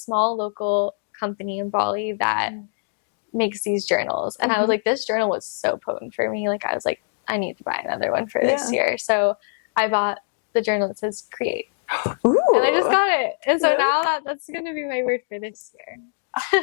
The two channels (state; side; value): silent; right; digital silence